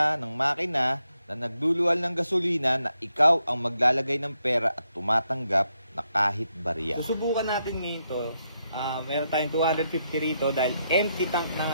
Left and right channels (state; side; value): inverted; both; correlation -0.80